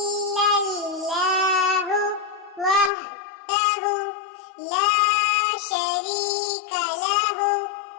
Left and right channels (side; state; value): right; drops out; at 2.9 s